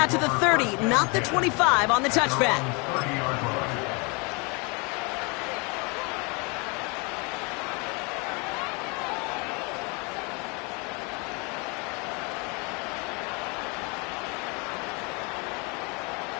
to the 30, not the 25 on the touchback.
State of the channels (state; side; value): quieter; right; 30.7 dB